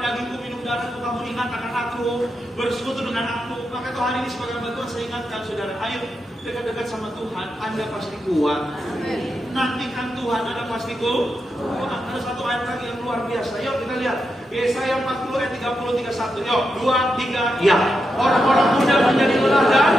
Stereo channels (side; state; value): both; normal; correlation 0.86